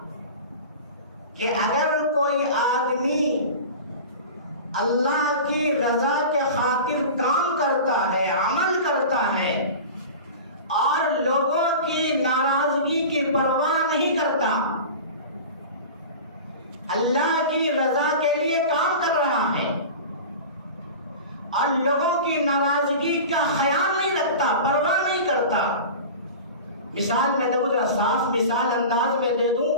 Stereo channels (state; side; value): inverted; both; correlation -0.34